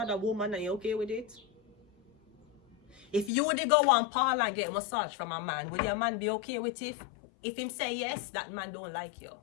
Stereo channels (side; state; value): right; drops out; at 3.3 s